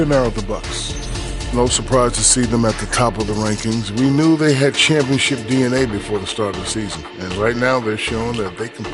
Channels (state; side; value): identical; both; correlation 1.00